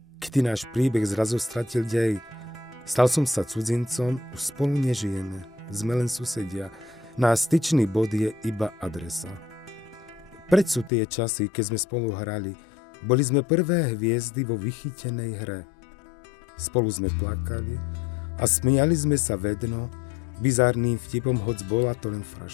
Kedy náš príbeh zrazu stratil dej. Stal som sa cudzincom, už spolu nežijeme. Sme len susedia. Náš styčný bod je iba adresa. Preč sú tie časy, keď sme spolu hrali. Boli sme prvé hviezdy vo vychytenej hre. Spolu sme plakali a smiali sme sa vedno, bizárnym vtipom, hoc bola to len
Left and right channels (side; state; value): right; drops out; at 10.9 s